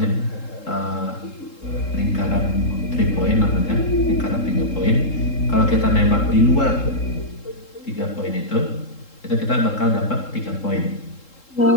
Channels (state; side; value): late; right; 3.7 ms